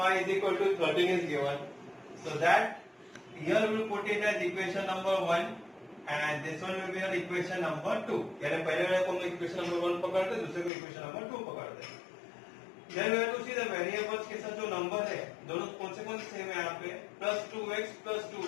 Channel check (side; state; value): right; drops out; at 10.7 s